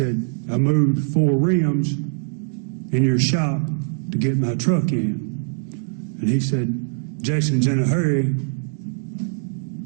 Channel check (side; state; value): left; silent; digital silence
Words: I moved 4 rims in your shop to get my truck in. And he said, Jason's in a hurry.